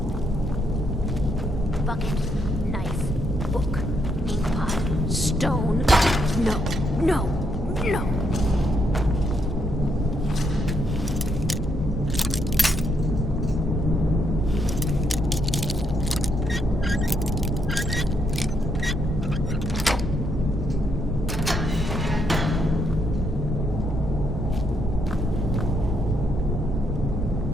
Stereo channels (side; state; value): both; normal; correlation 0.76